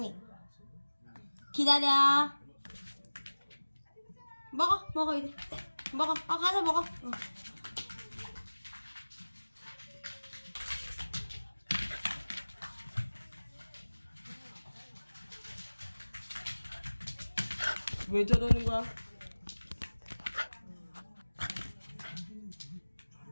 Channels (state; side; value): inverted; both; correlation -1.00